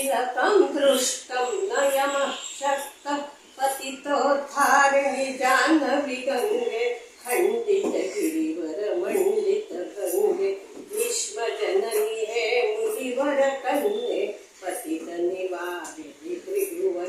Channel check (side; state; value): both; identical; correlation 1.00